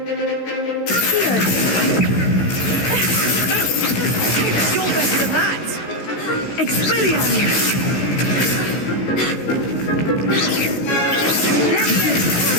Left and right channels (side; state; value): right; late; 16 ms